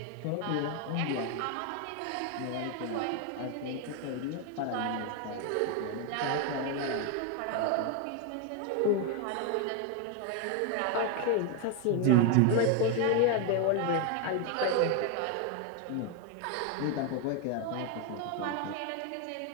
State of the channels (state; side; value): different; both; correlation 0.01